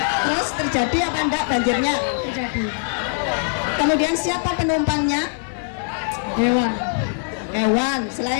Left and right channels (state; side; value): silent; right; digital silence